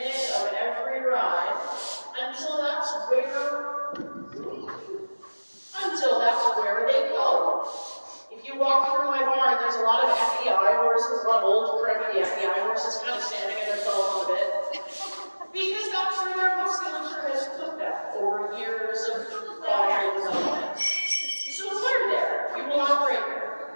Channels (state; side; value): inverted; both; correlation -1.00